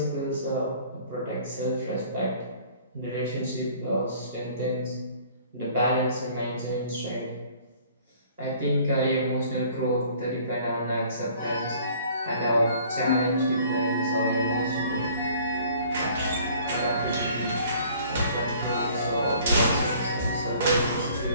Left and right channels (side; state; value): both; inverted; correlation -0.54